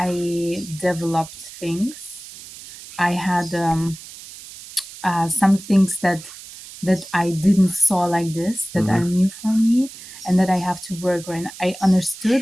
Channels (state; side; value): noise; right; hiss, 16 dB below the sound